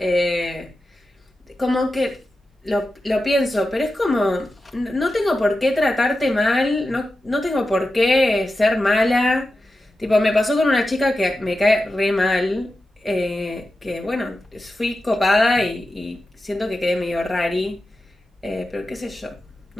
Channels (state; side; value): normal; both; correlation 0.92